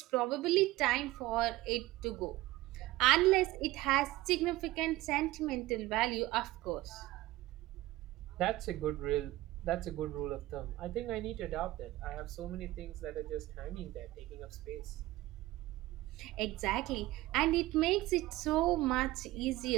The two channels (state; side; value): quieter; left; 17.7 dB